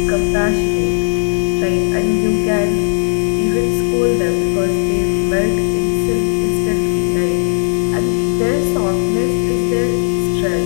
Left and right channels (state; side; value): silent; right; digital silence